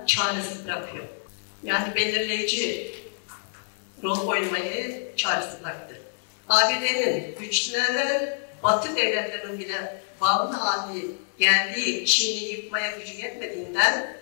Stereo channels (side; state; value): right; silent; 61 dB below the other